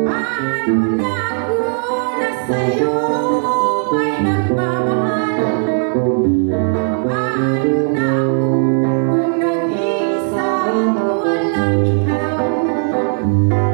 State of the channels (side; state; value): left; silent; 57 dB below the other